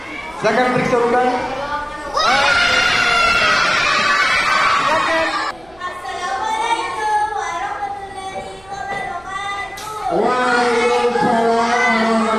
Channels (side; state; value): right; noise; hum, 28 dB below the sound